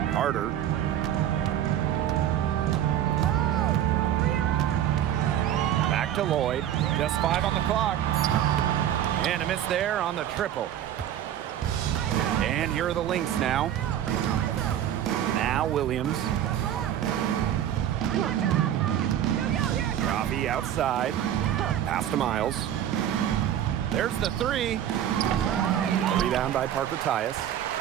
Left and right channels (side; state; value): left; quieter; 10.9 dB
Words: Carter. Back to Lloyd. Just 5 on the clock. And a miss there on the triple. And here are the Lynx now. Now Williams. Robbie outside. Pass to Miles. There's the 3. A rebound by Parker Tyus.